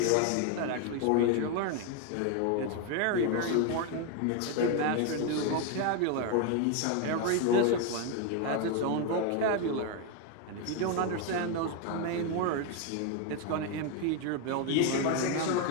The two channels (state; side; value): different; both; correlation 0.01